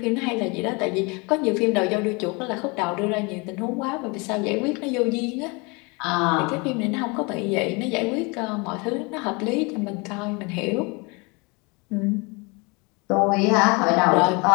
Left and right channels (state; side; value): quieter; right; 28.8 dB